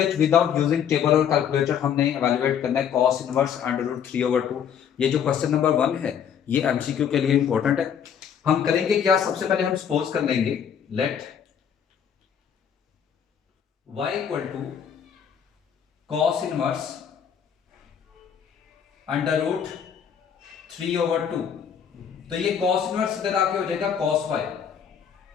विदाउट यूजिंग टेबल और कैलकुलेटर। हमने एवेल्युएट करना है cos इनवर्स √3/2। ये जो क्वेश्चन नंबर 1 है ये एमसीक्यू के लिए इंपॉर्टेंट है। हम करेंगे क्या, सबसे पहले हम सपोज कर लेंगे let y equal to cos inverse √3/2। तो ये cos इनवर्स इधर आके हो जाएगा cos y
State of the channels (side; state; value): right; quieter; 8.2 dB